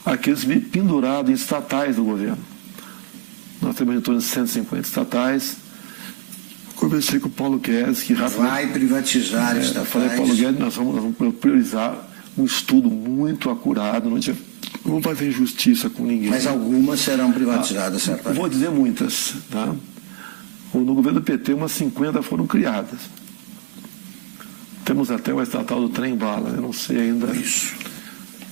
àqueles pendurados em estatais do governo. Nós temos em torno de 150 estatais. Conversei com o Paulo Guedes, que rapidamente... Vai privatizar estatais. Falei, Paulo Guedes, nós vamos priorizar um estudo muito acurado, não vai haver injustiça com ninguém. Mas algumas serão privatizadas, certamente. Vou dizer muitas. Tá? No governo do PT, umas 50 foram criadas. Temos até uma estatal do trem-bala, eu não sei ainda. Isso.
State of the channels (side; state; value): left; silent; 65 dB below the other